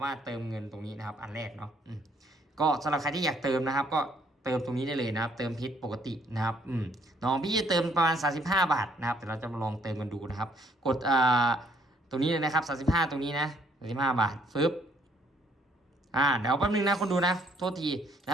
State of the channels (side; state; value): both; normal; correlation 0.65